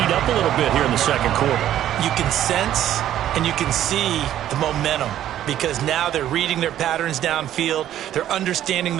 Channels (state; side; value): quieter; left; 11.9 dB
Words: up a little bit here in the second quarter. You can sense and you can see the momentum because now they're reading their patterns downfield, they're understanding